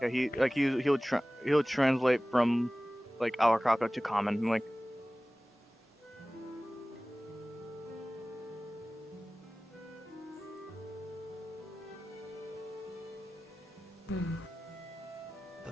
He'll translate from like Awakako to common, and, like.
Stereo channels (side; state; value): both; normal; correlation 0.98